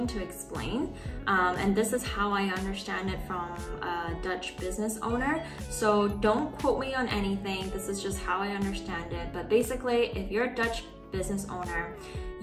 to explain. And this is how I understand it from a Dutch business owner. So don't quote me on anything. This is just how I understand it. But basically, if you're a Dutch business owner,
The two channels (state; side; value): identical; both; correlation 1.00